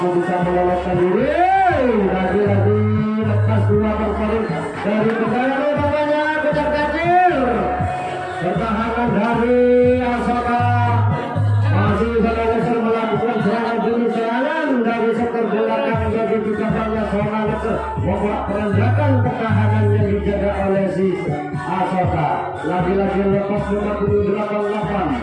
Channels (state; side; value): identical; both; correlation 1.00